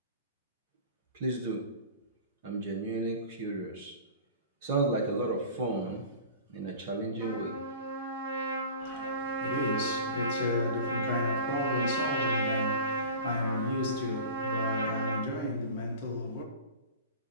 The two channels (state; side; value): inverted; both; correlation -0.37